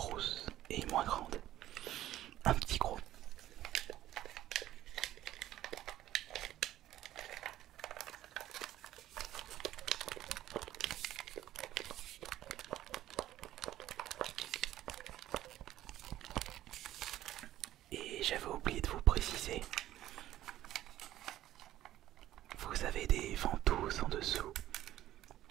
et moins grande. Un petit gros. Et j'avais oublié de vous préciser, vous avez des ventouses en dessous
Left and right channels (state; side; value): quieter; left; 13.6 dB